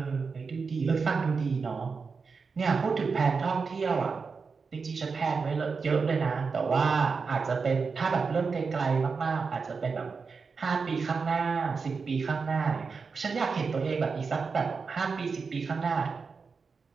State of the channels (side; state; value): left; quieter; 5.0 dB